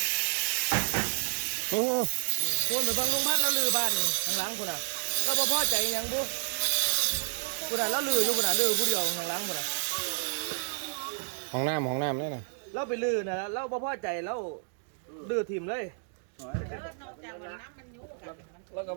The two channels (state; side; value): silent; left; digital silence